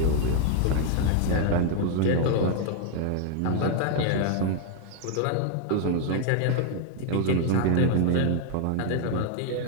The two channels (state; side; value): different; both; correlation 0.00